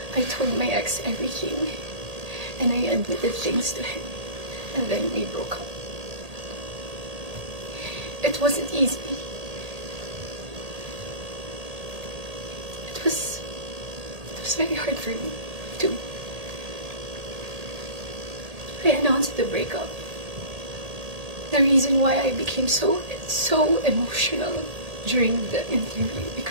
I told my ex everything. And I admitted things to him. And then we broke up. It wasn't easy. It was very hard for me, too. I announced the breakup. The reason why I became so emotional during the interview,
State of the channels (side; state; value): left; late; 1.8 ms